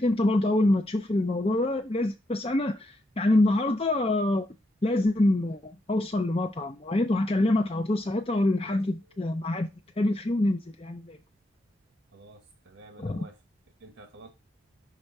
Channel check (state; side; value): normal; both; correlation 0.81